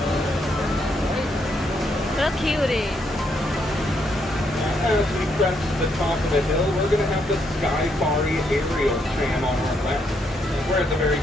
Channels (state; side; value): normal; both; correlation 0.75